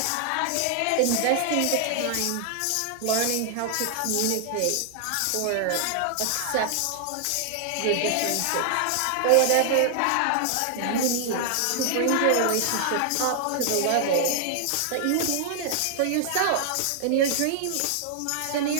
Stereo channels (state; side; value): different; both; correlation 0.00